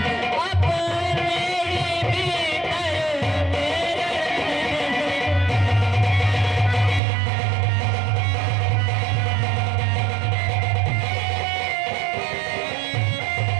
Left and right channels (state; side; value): drops out; left; at 7.0 s